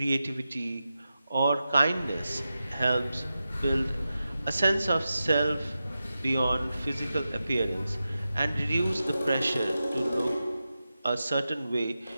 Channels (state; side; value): inverted; both; correlation -0.92